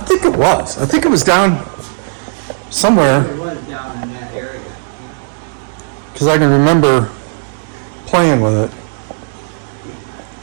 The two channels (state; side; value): silent; left; 67 dB below the other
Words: it was. I think it was down somewhere, It was down in that area. because I can remember playing with it.